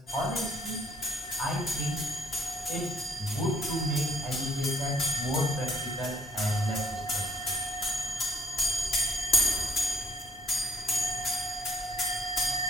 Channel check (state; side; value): normal; both; correlation 0.61